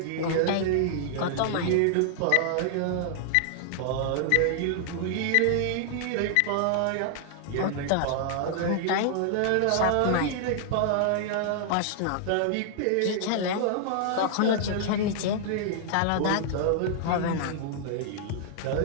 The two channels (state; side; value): different; both; correlation -0.01